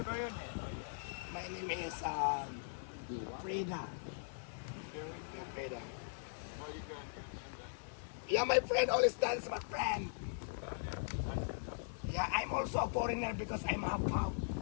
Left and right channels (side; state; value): right; silent; 51 dB below the other